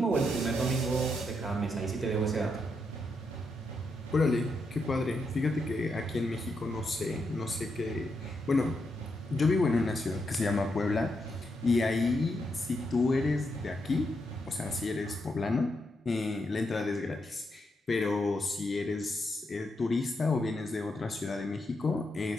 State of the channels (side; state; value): both; normal; correlation 0.82